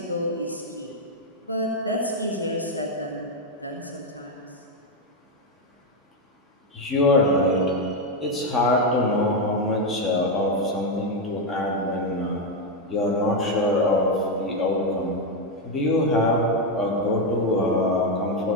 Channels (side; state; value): both; normal; correlation 0.05